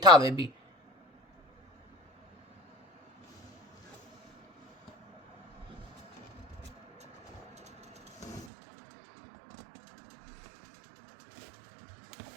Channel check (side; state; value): left; drops out; at 8.5 s